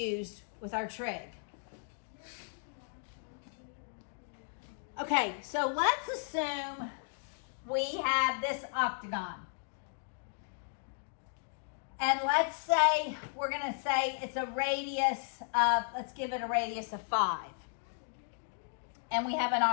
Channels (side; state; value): right; silent; digital silence